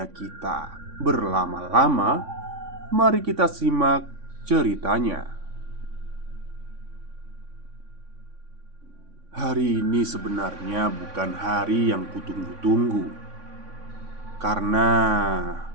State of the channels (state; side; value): late; left; 3.6 ms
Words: kita berlama-lama, mari kita simak ceritanya. Hari ini sebenarnya bukan hari yang kutunggu-tunggu, karena